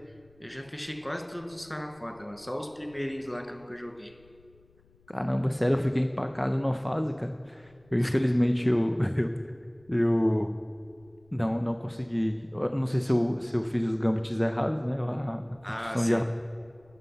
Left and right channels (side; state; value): left; noise; rumble, 30 dB below the sound